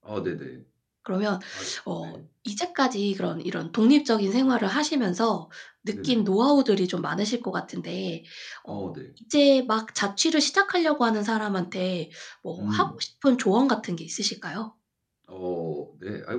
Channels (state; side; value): identical; both; correlation 1.00